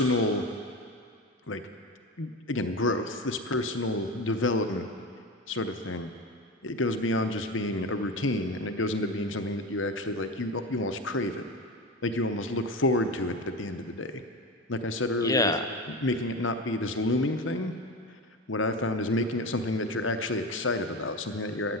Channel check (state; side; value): normal; both; correlation 0.24